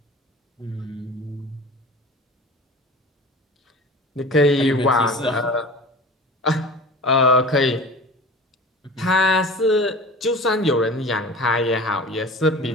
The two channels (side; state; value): both; normal; correlation 0.38